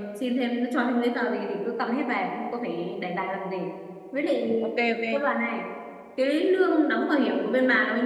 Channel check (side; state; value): both; identical; correlation 1.00